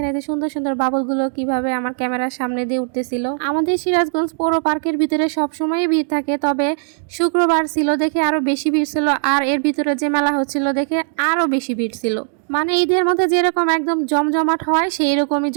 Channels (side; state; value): left; silent; digital silence